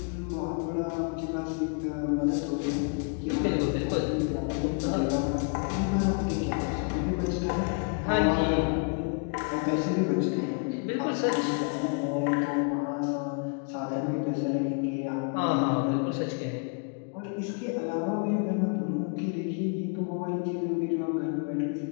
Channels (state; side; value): quieter; right; 39.3 dB